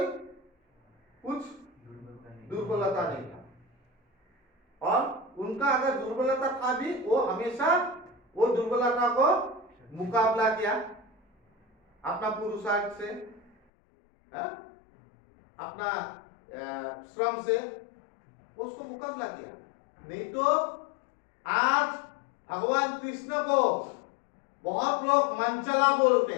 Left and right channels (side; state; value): right; drops out; at 13.5 s